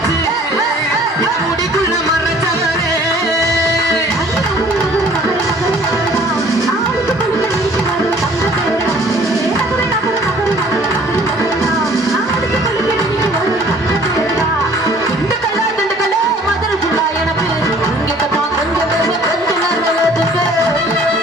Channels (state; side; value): normal; both; correlation 0.54